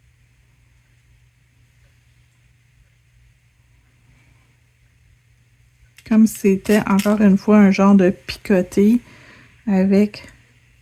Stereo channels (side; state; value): both; identical; correlation 1.00